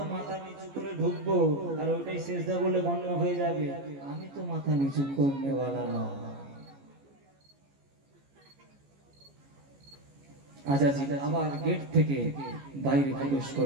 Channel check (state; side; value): late; left; 14 ms